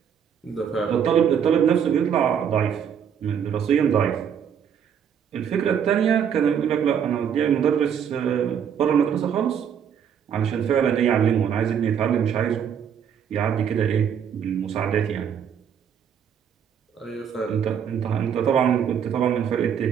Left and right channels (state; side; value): quieter; left; 8.2 dB